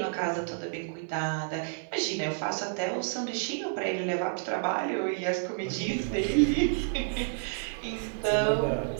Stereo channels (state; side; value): silent; left; digital silence